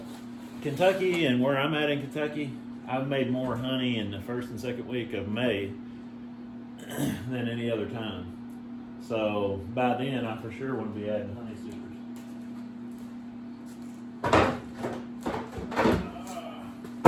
Kentucky, and where I'm at in Kentucky, I've made more honey in the first and second week of May than any other time. So by then, I for sure want to be adding honey supers.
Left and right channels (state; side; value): identical; both; correlation 1.00